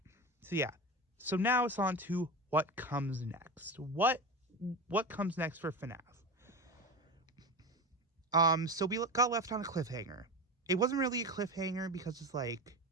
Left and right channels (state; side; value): normal; both; correlation 0.24